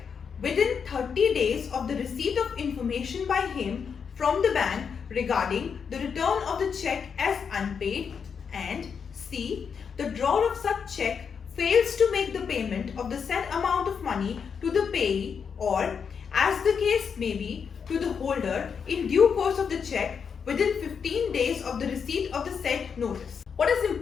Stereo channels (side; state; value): right; quieter; 6.5 dB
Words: within 30 days of the receipt of information by him from the bank regarding the return of the cheque as unpaid, and C. the drawer of such cheque fails to make the payment of the said amount of money to the payee or, as the case may be, to the holder in due course of the cheque within 15 days of the receipt of the said notice. What is